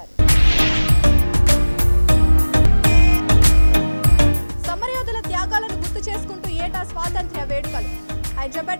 సమరయోధుల త్యాగాలను గుర్తు చేసుకుంటూ ఏటా స్వాతంత్ర్య వేడుకలు.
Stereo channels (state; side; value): inverted; both; correlation -1.00